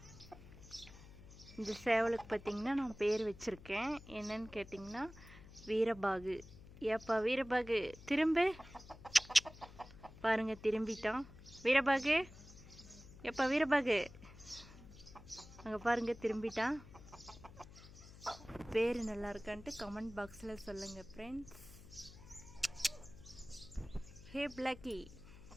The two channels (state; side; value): noise; left; hum, 18 dB below the sound